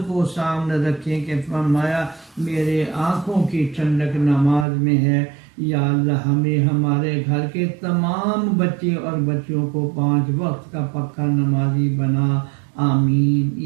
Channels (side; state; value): left; drops out; at 4.7 s